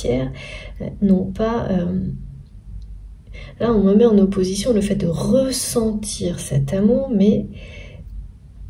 non pas... là, on me met en opposition le fait de ressentir cet amour, mais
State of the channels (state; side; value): identical; both; correlation 1.00